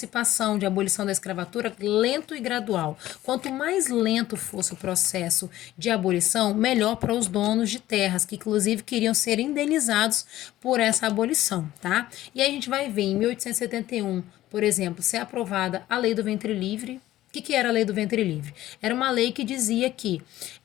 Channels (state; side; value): quieter; right; 14.7 dB